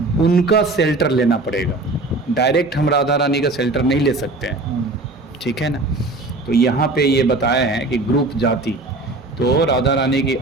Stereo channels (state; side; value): quieter; left; 3.0 dB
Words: उनका शेल्टर लेना पड़ेगा। डायरेक्ट हम राधा रानी का शेल्टर नहीं ले सकते हैं, ठीक है ना। तो यहाँ पे ये बताया है कि ग्रुप, जाति। तो राधा रानी की